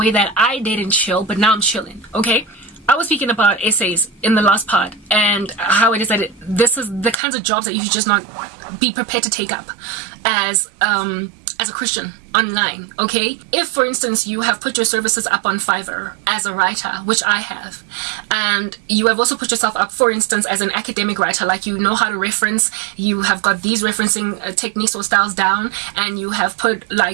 that I didn't chill, but now I'm chilling, okay? I was speaking about essays in the last part and how it is that this is the kinds of jobs that you should just not be prepared to take up as a Christian online, okay? If, for instance, you have put your services up on Fiverr as a writer, which I have, and you have also put yourself up, for instance, as an academic writer, like you know how to reference, you have got these referencing techniques or styles down, and you have put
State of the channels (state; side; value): drops out; left; at 7.2 s